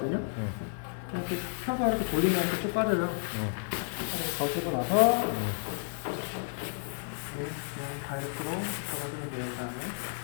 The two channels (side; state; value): right; silent; 57 dB below the other